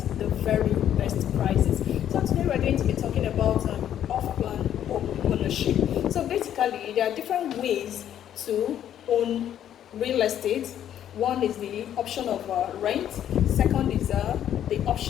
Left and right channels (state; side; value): quieter; right; 10.5 dB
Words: the very best prices. So today we're going to be talking about off-plan home ownership. So basically, there are different ways to own real estate. One is the option of rent. Second is the